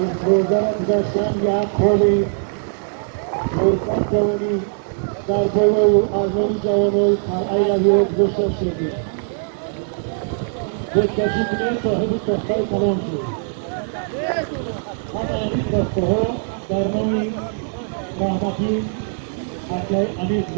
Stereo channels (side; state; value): left; silent; digital silence